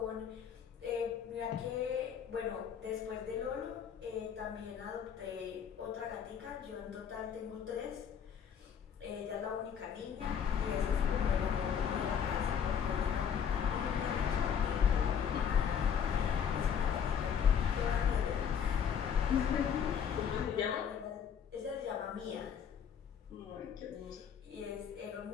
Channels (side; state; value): right; quieter; 7.8 dB